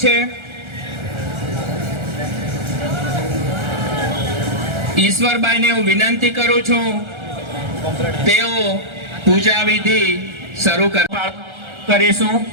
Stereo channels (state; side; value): late; left; 1.4 ms